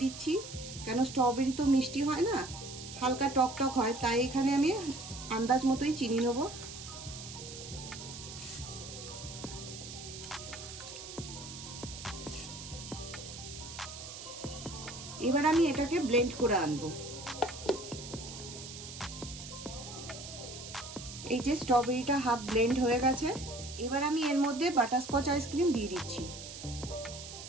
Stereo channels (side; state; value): right; noise; hiss, 11 dB below the sound